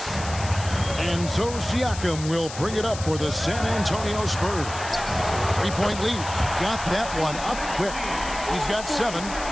And so Siakam will bring it up for the San Antonio Spurs. 3-point lead. Got that one up quick. He's got 7.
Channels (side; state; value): left; noise; hiss, 11 dB below the sound